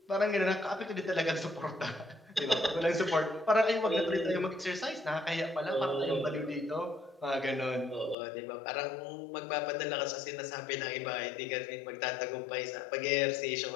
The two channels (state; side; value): drops out; right; at 8.2 s